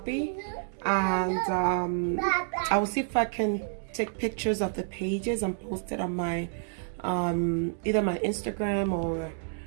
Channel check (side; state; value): left; silent; digital silence